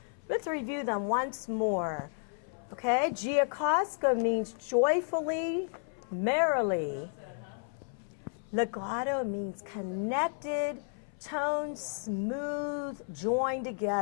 review them once more. Okay, giocosco means joyfully, merrily. Legato means connected, tones smooth, joined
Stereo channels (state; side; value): silent; right; 56 dB below the other